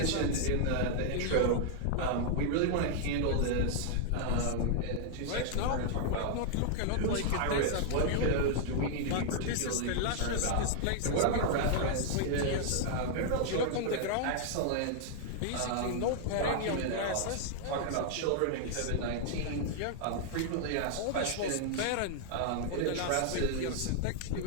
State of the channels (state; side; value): different; both; correlation 0.00